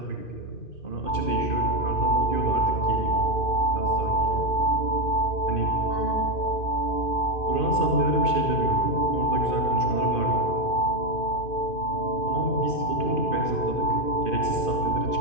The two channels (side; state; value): right; late; 2.5 ms